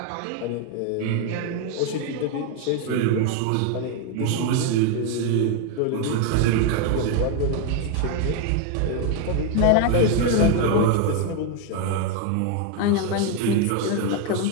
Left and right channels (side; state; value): both; different; correlation 0.01